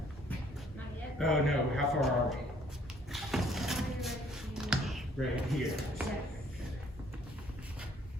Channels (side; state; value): both; normal; correlation 0.62